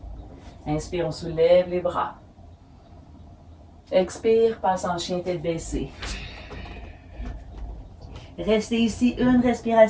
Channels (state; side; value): identical; both; correlation 1.00